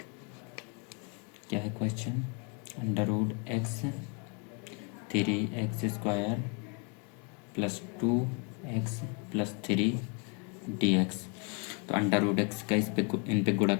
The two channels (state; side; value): quieter; right; 33.5 dB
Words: क्या है question under root X 3x square plus 2x plus 3 D X. तो अंडर रूट एक्स का इन पे गुणा